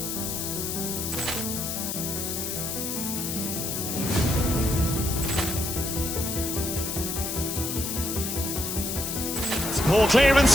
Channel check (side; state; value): left; noise; hiss, 3 dB below the sound